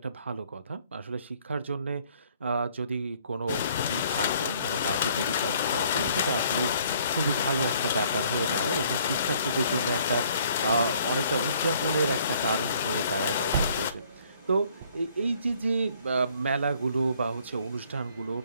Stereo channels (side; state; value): both; inverted; correlation -0.61